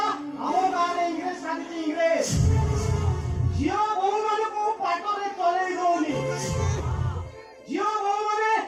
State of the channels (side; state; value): both; identical; correlation 1.00